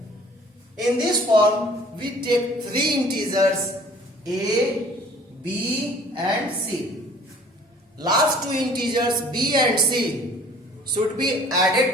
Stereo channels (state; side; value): normal; both; correlation 0.52